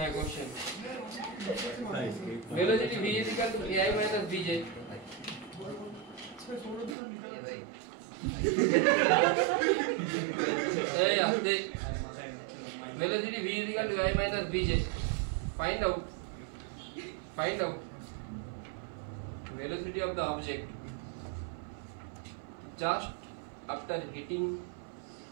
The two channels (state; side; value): drops out; left; at 7.0 s